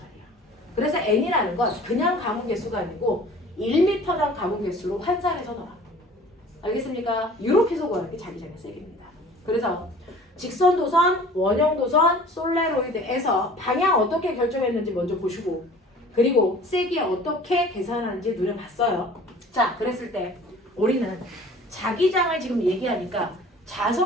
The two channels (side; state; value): both; normal; correlation 0.47